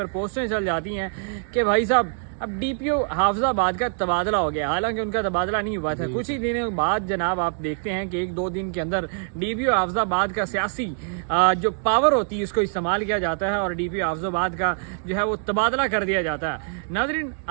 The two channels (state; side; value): silent; left; 62 dB below the other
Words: पोस्टें चल जाती हैं कि भाई साहब अब डीपीओ हाफिजाबाद का तबादला हो गया। हालांकि उनका तबादला नहीं हुआ था। कुछ ही दिनों बाद जनाब आप देखते हैं कि 1-2 दिन के अंदर डीपीओ हाफिजाबाद का सियासी जो पावर होती है उसको इस्तेमाल किया जाता है और डीपीओ हाफिजाबाद का जो है वो तबादला कर दिया जाता है। नाज़रीन,